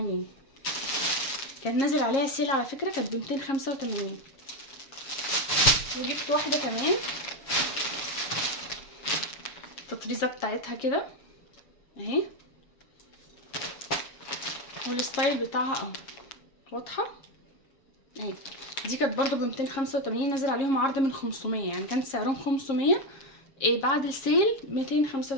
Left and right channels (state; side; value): late; right; 7.3 ms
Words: كان نازل عليها سيل على فكره، كانت ب 285. وجبت واحده كمان التطريزه بتاعتها كده اهي، والستايل بتاعها اهو واضحه اهي. دي كانت برضه ب 285، نازل عليهم عرض من 500، يعني كانت سعرهم 500 بعد السيل